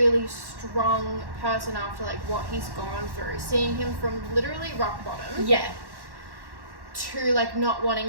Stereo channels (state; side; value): late; left; 1.1 ms